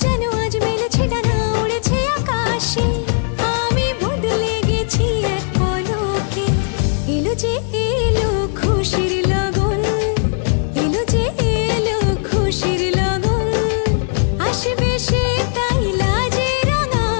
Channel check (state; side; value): silent; right; 60 dB below the other